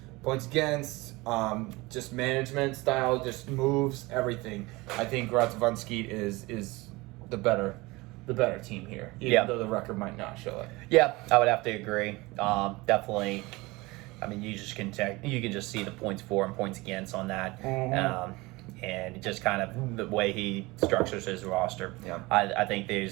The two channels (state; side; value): quieter; left; 22.4 dB